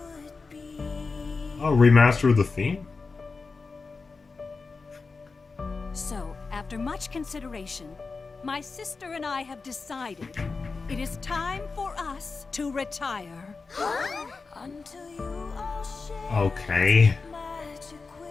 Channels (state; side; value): quieter; right; 4.3 dB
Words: Oh, remaster of the theme? So, after much consideration, my sister and I have decided it is time for us to retire. Okay.